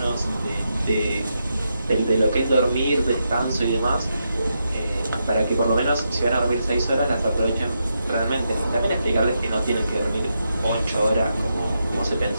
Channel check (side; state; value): both; inverted; correlation -0.84